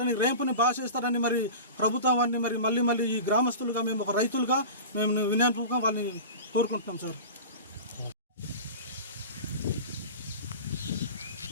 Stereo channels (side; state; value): both; inverted; correlation -0.32